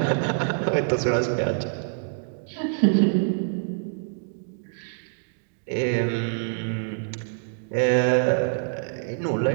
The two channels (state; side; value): silent; left; digital silence